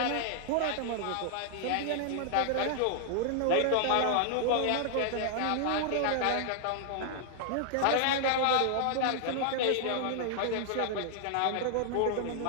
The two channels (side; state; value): both; different; correlation 0.00